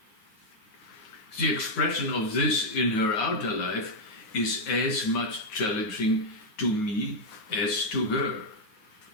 The expression of this in her outer life is as much challenging to me as to her.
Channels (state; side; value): late; right; 9.4 ms